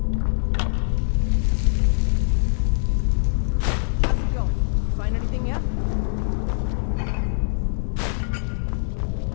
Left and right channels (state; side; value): silent; right; 63 dB below the other